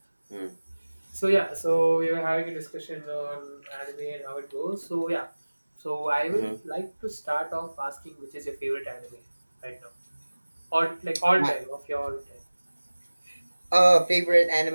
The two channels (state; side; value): inverted; both; correlation -1.00